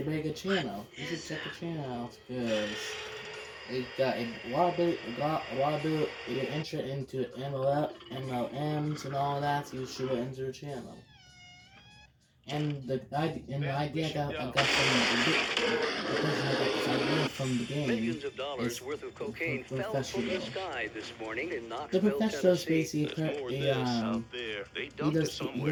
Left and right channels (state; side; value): identical; both; correlation 1.00